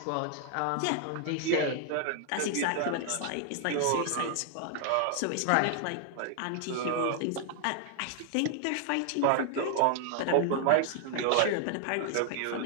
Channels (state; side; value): different; both; correlation 0.00